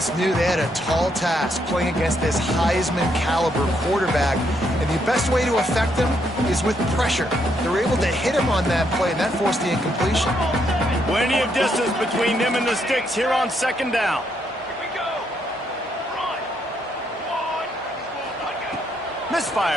knew they had a tall task playing against this Heisman caliber quarterback, and the best way to affect him is with pressure. They were able to hit him on that play, and that forced the incompletion. Plenty of distance between them and the sticks here on 2nd down.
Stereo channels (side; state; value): both; normal; correlation 0.75